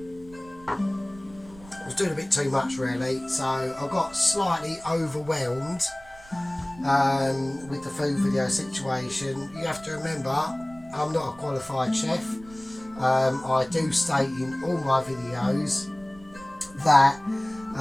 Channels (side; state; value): right; noise; rumble, 22 dB below the sound